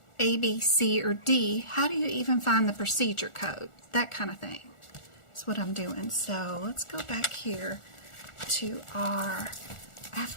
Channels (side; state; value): right; late; 1.4 ms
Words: A, B, C, or D, how do you even find the procedure code? That kind of thing is what I'm doing. So let's go back here to our